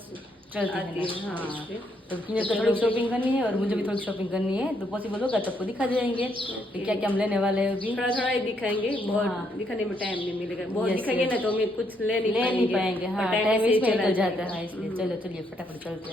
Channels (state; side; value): normal; both; correlation 0.74